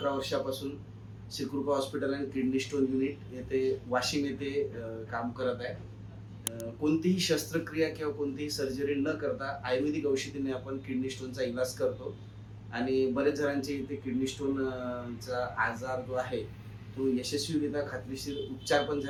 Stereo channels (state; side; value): identical; both; correlation 1.00